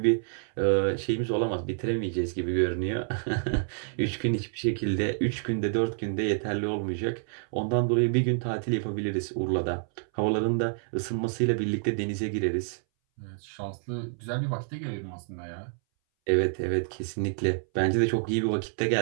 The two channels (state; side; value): silent; left; 59 dB below the other